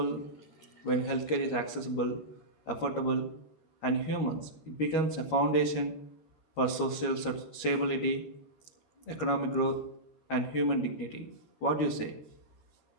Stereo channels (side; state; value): right; late; 13 ms